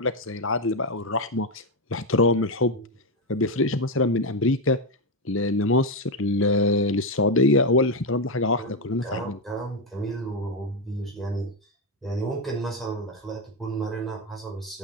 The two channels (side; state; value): both; normal; correlation 0.07